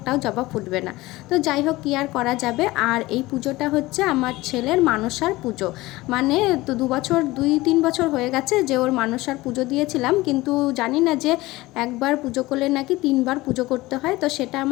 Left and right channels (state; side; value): quieter; right; 19.5 dB